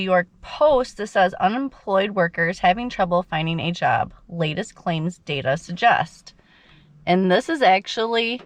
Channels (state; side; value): identical; both; correlation 1.00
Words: Post that says unemployed workers having trouble finding a job, latest claims data suggest. And this is actually